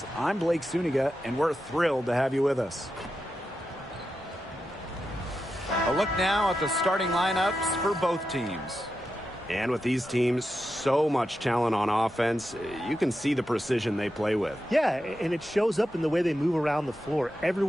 I'm Blake Suniga, and we're thrilled to have you with us. A look now at the starting lineups for both teams. And with these teams, so much talent on offense, you can see the precision they play with. Yeah, and it shows up in the way they move around the floor.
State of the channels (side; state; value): both; normal; correlation 0.89